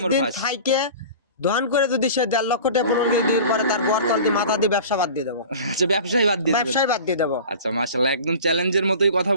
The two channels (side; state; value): both; inverted; correlation -0.39